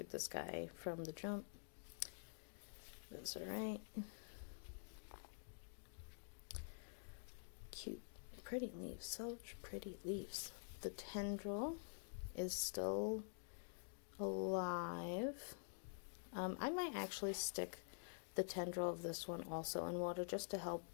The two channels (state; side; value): silent; right; digital silence